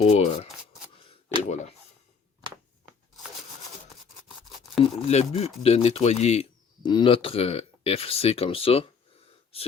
et voilà. Le but de nettoyer notre FC comme ça,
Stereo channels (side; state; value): right; quieter; 5.8 dB